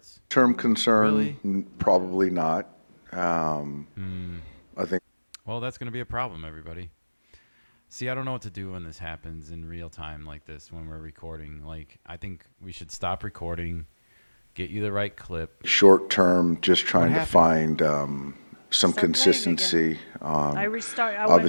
concern, Really? probably not. I think Well, that's going to be a problem, everybody. See, I don't know what to do when this happens in real time like this when we're recording. Like, I think we should stop recording, get you the right clip. short-term, just trying to happened? find some Start playing consistency I on restart. I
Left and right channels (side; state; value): both; inverted; correlation -1.00